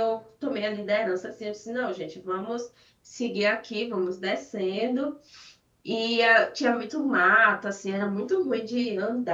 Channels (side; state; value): both; identical; correlation 1.00